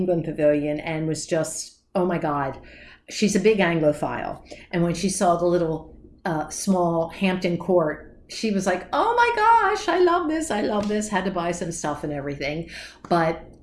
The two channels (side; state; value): both; identical; correlation 1.00